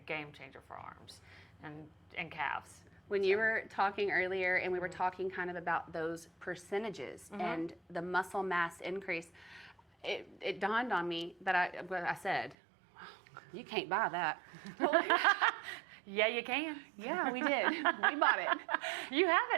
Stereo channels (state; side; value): drops out; left; at 12.6 s